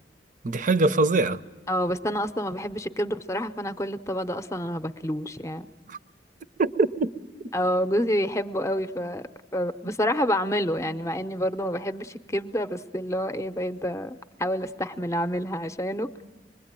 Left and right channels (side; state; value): both; normal; correlation 0.56